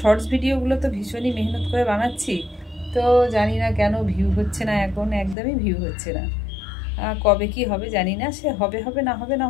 ভিডিওগুলো তো ভীষণই মেহনত করে বানাচ্ছি, তো জানি না কেন ভিউ হচ্ছে না, এখন একদমই ভিউ হচ্ছে না। কবে কি হবে জানি না, সে হবে হবে না হবে না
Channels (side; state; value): right; drops out; at 5.4 s